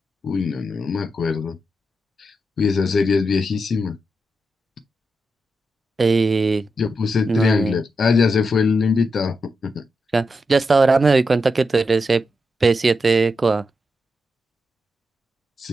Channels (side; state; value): both; normal; correlation 0.86